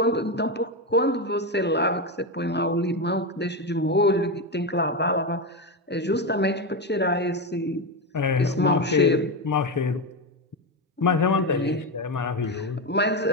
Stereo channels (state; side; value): normal; both; correlation 0.12